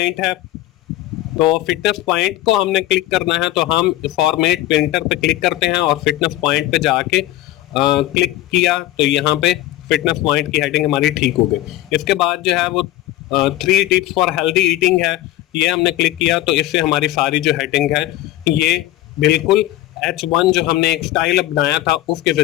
है। तो फिटनेस पॉइंट को हमने क्लिक करना है तो हम फॉर्मेट पेंटर पे क्लिक करते हैं और फिटनेस पॉइंट पे जाके क्लिक किया तो यहाँ पे फिटनेस पॉइंट की हेडिंग हमारी ठीक हो गई। इसके बाद जो है वो 3 टिप्स फॉर हेल्दी ईटिंग है, ये हमने क्लिक किया तो इससे हमारी सारी जो हेडिंग है ये बिल्कुल H1 जो हमने एक स्टाइल बनाया था उसके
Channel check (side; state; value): right; quieter; 15.3 dB